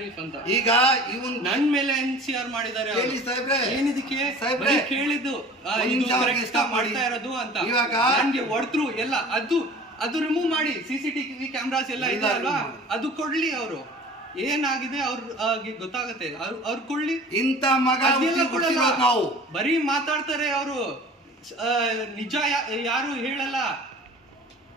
ಅಂತ ಈಗ ಇವನ್ ನನ್ ಮೇಲೆ NCR ಮಾಡಿದ್ದಾರೆ. ಏನಿದಕ್ಕೆ ಕೇಳಿದ್ದು ಇದು ಕರೆಕ್ಟ್ ಮಾಡ್ತಾ ಇರೋದು ಅಂತ ನನ್ಗೆ ಹೊಡೆದ್ರು ಎಲ್ಲ. ಅದು ರಿಮೂವ್ ಮಾಡಿ CCTV ಕ್ಯಾಮ್ರಾಸ್ ಎಲ್ಲ ಇದೆ ಅಲ್ವಾ, ಅದು ಕೊಡ್ಲಿ. ಅವರು ಏನಾಗಿದೆ ಅವ್ರಿಗೆ ಗೊತ್ತಾಗತ್ತೆ, ಅವ್ರು ಕೊಡ್ಲಿ. ಇಂತ ಮಗ ನಾವು ಬರೀ ಮಾತಾಡ್ತಾರೆ ಅವರು, ನಿಜ ಯಾರು ಹೇಳಲ್ಲ.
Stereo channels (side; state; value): both; normal; correlation 0.44